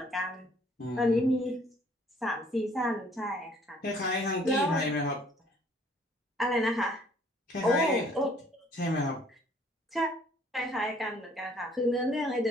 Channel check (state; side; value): normal; both; correlation 0.59